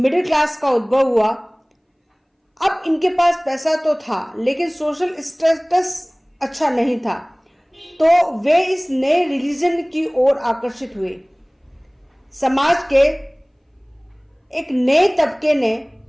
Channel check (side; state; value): both; identical; correlation 1.00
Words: क्लास का उद्भव हुआ। अब इनके पास पैसा तो था लेकिन सोशल स्टेटस अच्छा नहीं था, तो वे इस नए रिलीजन की ओर आकर्षित हुए। समाज के एक नए तबके ने